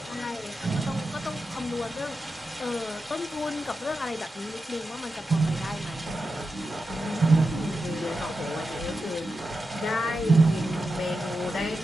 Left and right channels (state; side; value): normal; both; correlation 0.90